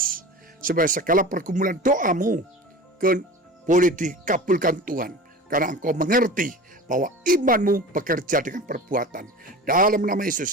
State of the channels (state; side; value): normal; both; correlation 0.35